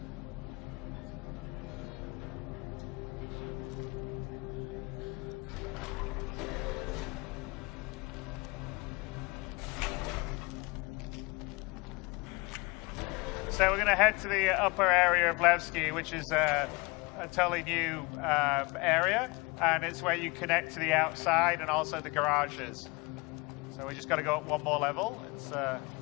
So we're going to head to the upper area of Levski, which is a totally new area, and it's where you connect to the outside and also the garages. So we just got to go up one more level. It's there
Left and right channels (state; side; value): quieter; right; 25.9 dB